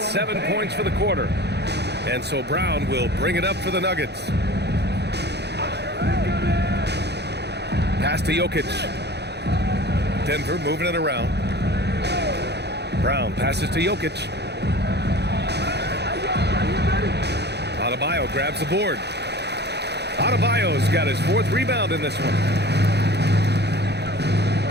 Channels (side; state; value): left; late; 0.49 ms